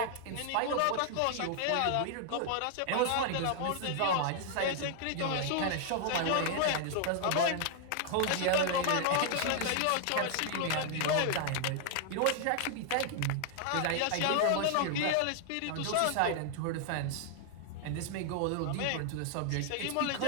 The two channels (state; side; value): different; both; correlation 0.00